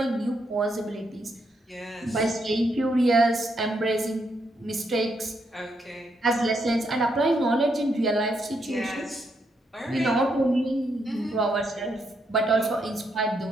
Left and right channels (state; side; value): normal; both; correlation 0.78